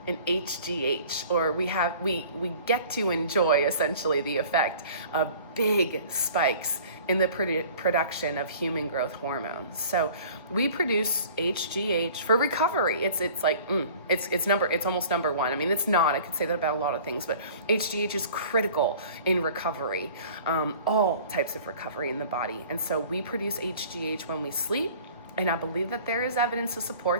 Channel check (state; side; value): inverted; both; correlation -0.47